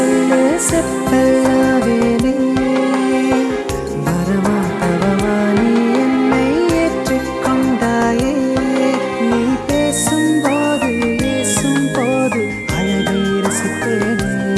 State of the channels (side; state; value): both; identical; correlation 1.00